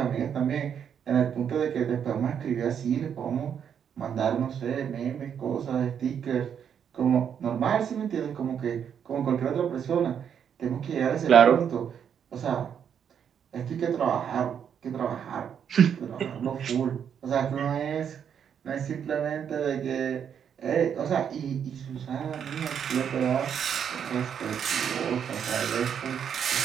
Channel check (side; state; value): left; quieter; 8.1 dB